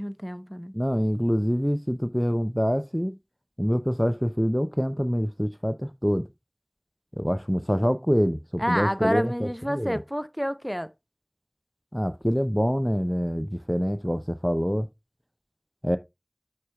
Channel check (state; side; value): identical; both; correlation 1.00